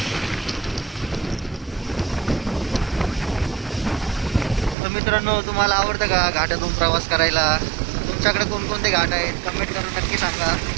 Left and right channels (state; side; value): drops out; left; at 4.8 s